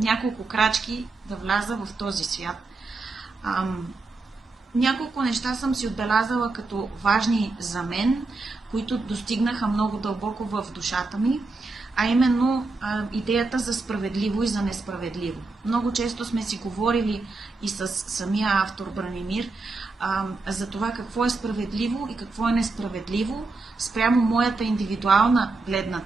крачки да вляза в този свят. Няколко неща съм си отбелязала като важни за мен, които достигнаха много дълбоко в душата ми, а именно идеята за справедливо и за несправедливо. Много често сме си говорили и с самия автор Бранимир за това какво е справедливо и какво е несправедливо спрямо моята индивидуална гледна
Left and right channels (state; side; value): quieter; left; 3.6 dB